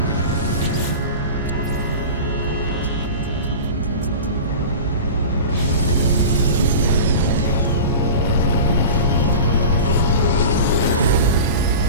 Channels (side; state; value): both; inverted; correlation -0.33